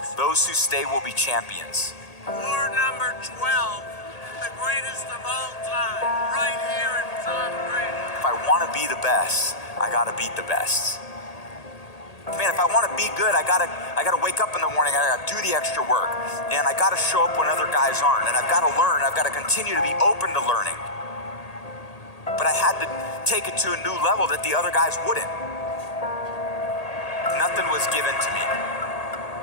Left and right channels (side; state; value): right; late; 1.8 ms